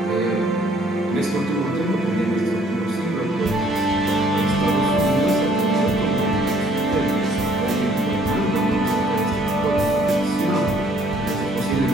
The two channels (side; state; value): both; normal; correlation 0.62